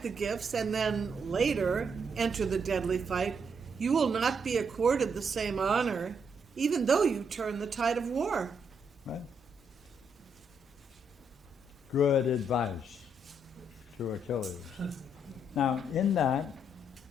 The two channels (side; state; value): both; normal; correlation 0.76